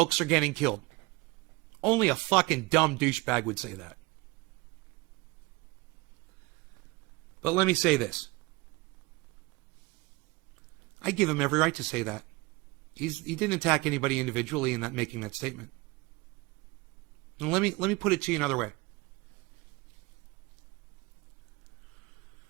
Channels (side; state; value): left; quieter; 23.2 dB